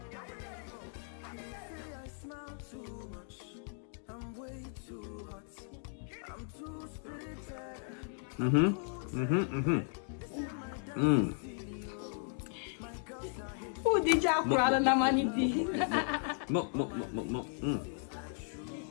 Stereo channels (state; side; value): silent; right; 54 dB below the other